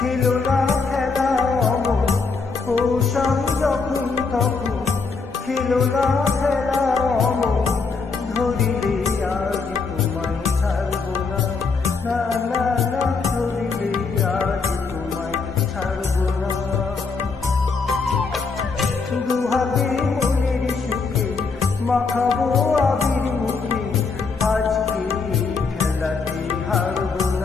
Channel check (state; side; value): quieter; right; 4.6 dB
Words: না খেলা অমন, কৌশল যখন তখন খেলো না খেলা অমন, ধরিলে আজ তোমায় ছাড়বো না, না না না, ধরিলে আজ তোমায় ছাড়বো না। দুহাতে মনের সুখে মাখাবো আবির মুখে, আজকে খেলাতে হারবো